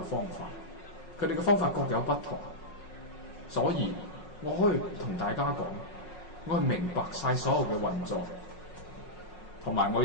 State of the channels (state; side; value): late; right; 5.5 ms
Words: 方法，佢哋嘅方法各有不同，所以我可以同大家講，我係明白晒所有嘅運作，同埋我